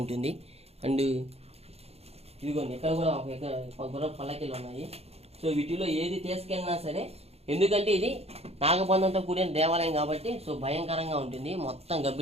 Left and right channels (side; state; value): left; late; 0.30 ms